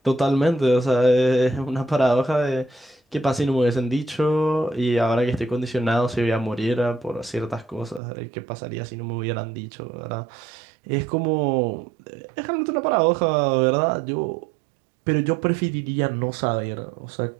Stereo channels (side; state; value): left; drops out; at 8.0 s